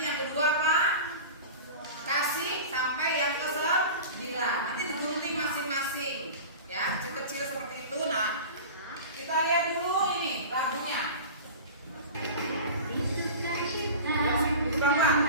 yang kedua apa? Kasih sampai yang ke-9. Nanti digunting masing-masing. Ya, kecil-kecil seperti itu. Nah, kita lihat dulu ini lagunya.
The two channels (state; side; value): inverted; both; correlation -0.34